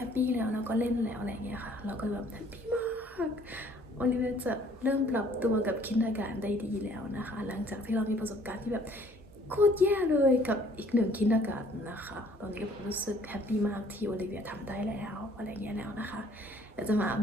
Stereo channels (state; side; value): normal; both; correlation 0.58